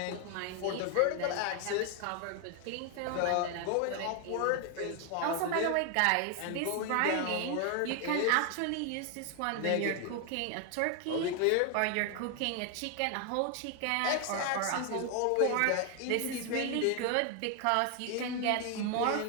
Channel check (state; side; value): different; both; correlation 0.00